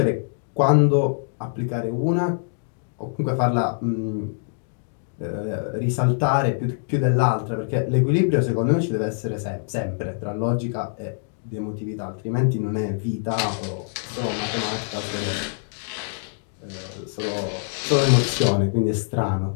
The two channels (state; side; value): silent; right; digital silence